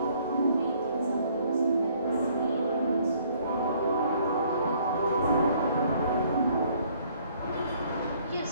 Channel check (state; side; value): inverted; both; correlation -0.62